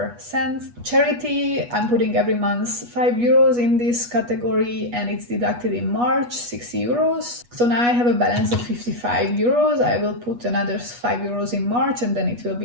cents. Charity, I'm putting every month 5 euros in this category, and it's deducted in March, 60 euros. So now I have a balance of 55 euros. I will put another 5 euros in March, and then it will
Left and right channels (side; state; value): left; late; 8.3 ms